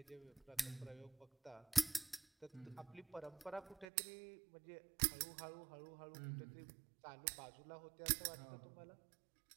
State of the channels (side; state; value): left; drops out; at 3.9 s